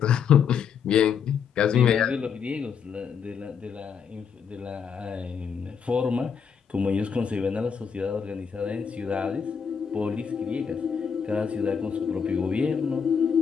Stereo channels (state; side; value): quieter; right; 6.8 dB